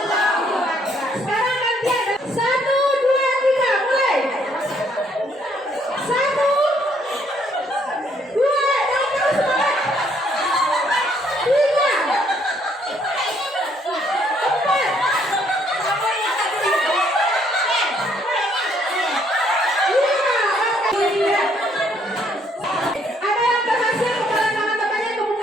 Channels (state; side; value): normal; both; correlation 0.67